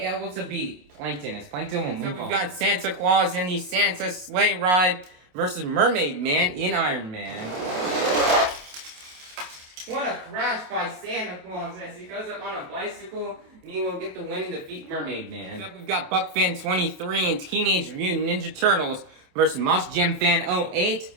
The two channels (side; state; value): left; late; 27 ms